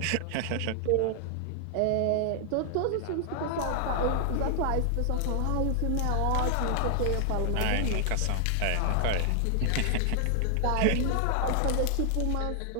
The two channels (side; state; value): both; different; correlation 0.00